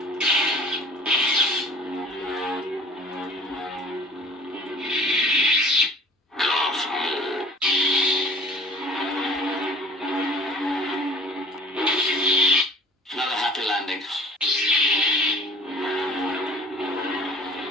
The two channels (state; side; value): normal; both; correlation 0.47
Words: Another happy landing.